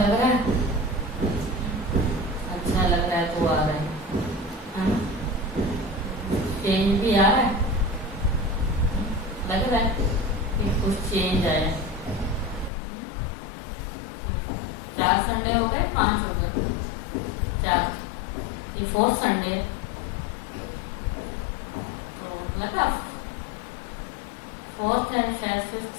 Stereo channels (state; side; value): drops out; right; at 12.7 s